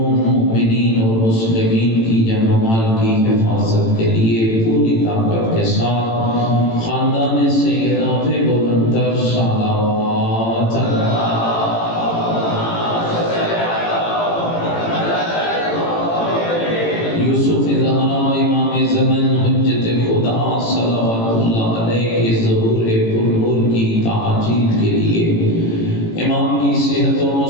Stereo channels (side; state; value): right; late; 18 ms